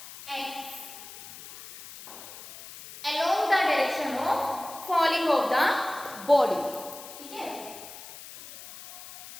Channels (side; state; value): left; noise; hiss, 15 dB below the sound